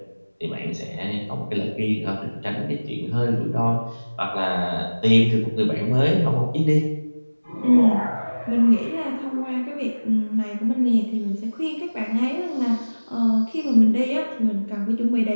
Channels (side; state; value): both; inverted; correlation -1.00